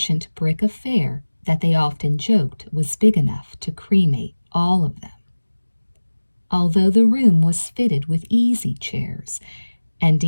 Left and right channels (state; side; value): inverted; both; correlation -1.00